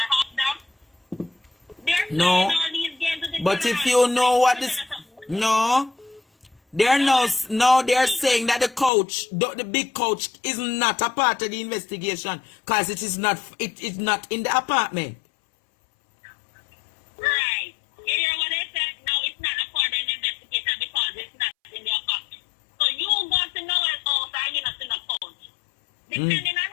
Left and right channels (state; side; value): drops out; right; at 8.9 s